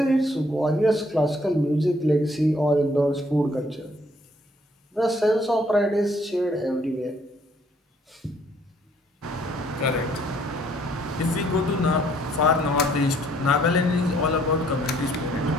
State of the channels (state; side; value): normal; both; correlation 0.64